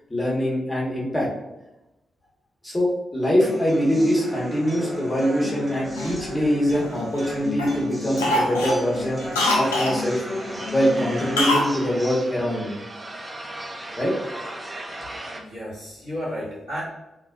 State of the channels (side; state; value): both; normal; correlation 0.85